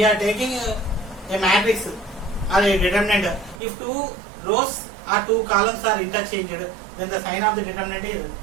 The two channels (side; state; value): left; drops out; at 3.6 s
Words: are taking a matrix or a determinant, if two rows or two columns are interchanged, then the sign of the determinant is